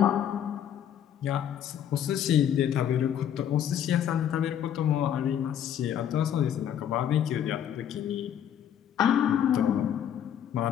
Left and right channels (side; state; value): right; quieter; 9.7 dB